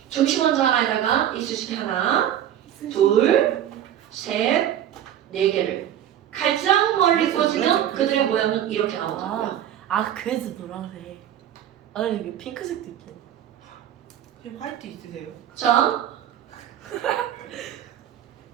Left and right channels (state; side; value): quieter; left; 10.8 dB